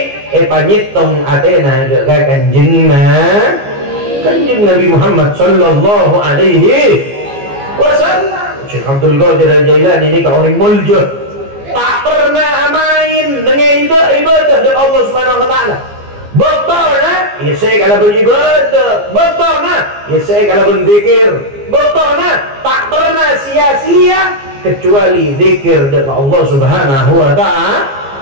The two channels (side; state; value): left; late; 15 ms